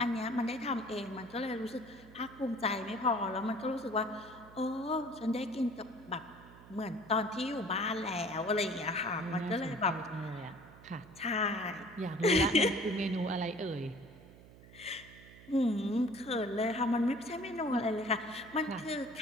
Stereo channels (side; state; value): right; noise; hum, 20 dB below the sound